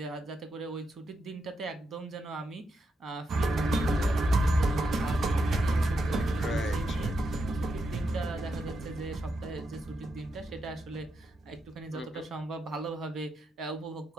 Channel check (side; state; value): both; normal; correlation 0.84